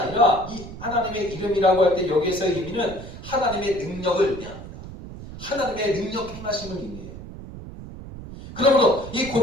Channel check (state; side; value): noise; right; rumble, 13 dB below the sound